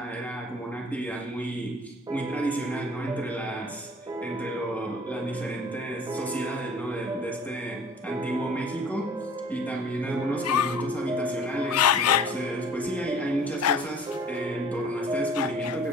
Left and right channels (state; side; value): normal; both; correlation 0.48